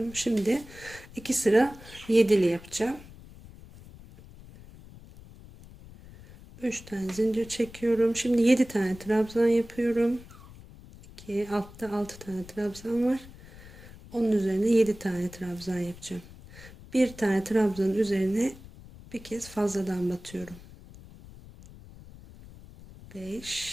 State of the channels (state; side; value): noise; left; rumble, 19 dB below the sound